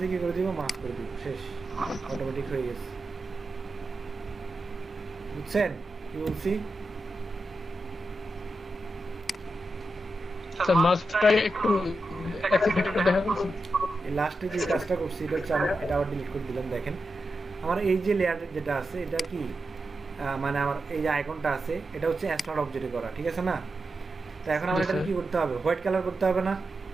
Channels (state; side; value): normal; both; correlation 0.89